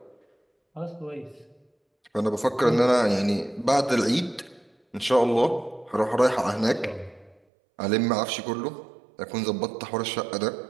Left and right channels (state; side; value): drops out; left; at 7.4 s